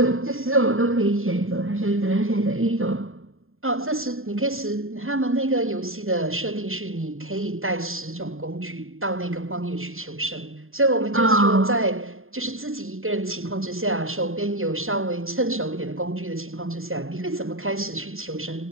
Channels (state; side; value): late; left; 0.61 ms